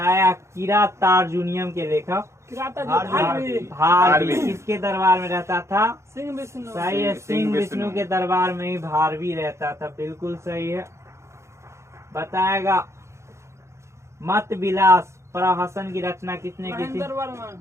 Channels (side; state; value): left; late; 0.14 ms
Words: किरातार्जुनियम के लेखक भारवी किसके दरबार में रहता था? सिंह विष्णु। सही है, सिंह विष्णु के दरबार में ही भारवी रहता था। बिल्कुल सही है। बताएगा मत विलास प्रहसन की रचना किसने की थी? महेंद्र वर्मन।